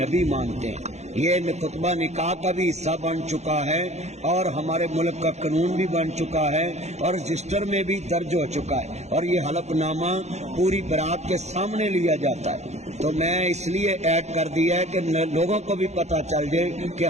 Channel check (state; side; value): late; left; 0.32 ms